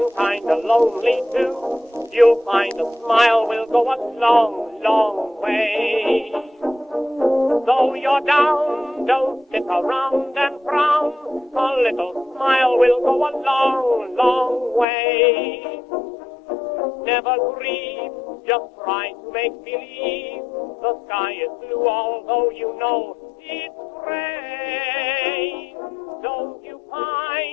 kinda lonely too, you'll find a smile will go a long, long way. Though you're down, don't sit around and frown. A little smile will go a long, long way. Never grieve, just try to make believe the sky is blue, although you know it's gray. Don't you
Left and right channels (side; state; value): right; drops out; at 14.9 s